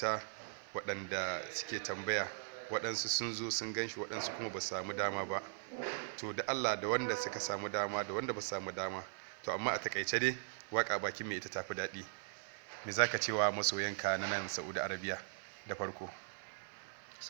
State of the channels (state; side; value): silent; left; 51 dB below the other